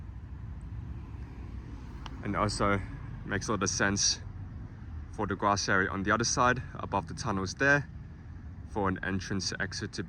And also makes a lot of sense for the grass area on the other side, above the tunnels there, for an entrance exit to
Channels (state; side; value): identical; both; correlation 1.00